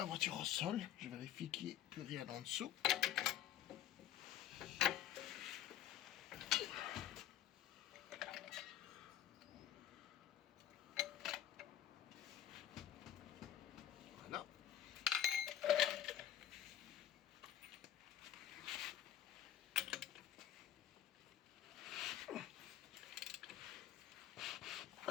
voiture au sol. Je vérifie qu'il n'y ait plus rien en dessous. Voilà.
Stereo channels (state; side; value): quieter; right; 11.1 dB